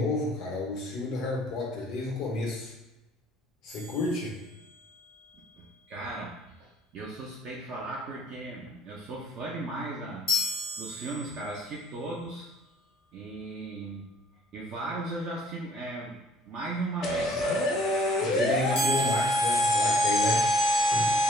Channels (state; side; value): normal; both; correlation 0.58